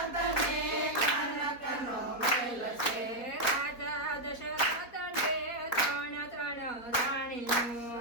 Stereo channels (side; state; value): right; late; 4.2 ms